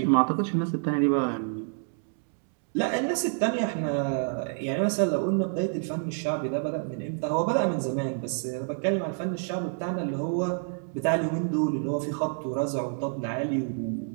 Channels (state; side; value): silent; left; digital silence